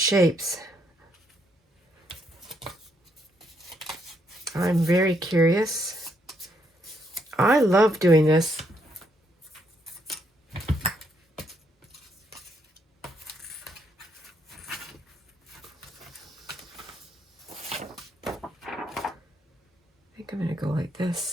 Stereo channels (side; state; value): both; normal; correlation 0.74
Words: I'm very curious. I love doing this. I think I'm going to go like